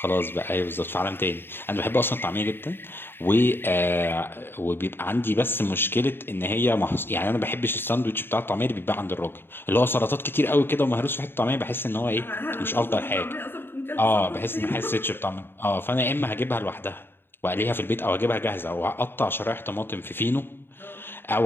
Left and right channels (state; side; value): late; right; 0.10 ms